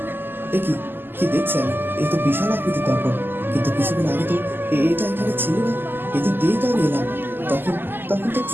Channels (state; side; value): late; left; 0.095 ms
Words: এ কি কি দেখছি আমি? এই তো বিশাল আকৃতির দর্পণ, কিন্তু কিছুদিন আগে তো এটা এখানে ছিল না। এদিক দিয়েই তো আমি এলাম, তখন তখন তো